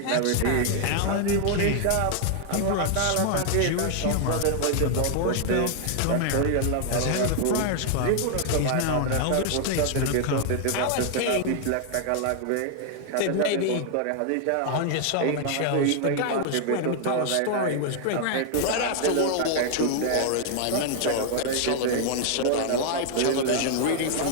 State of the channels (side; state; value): both; different; correlation 0.00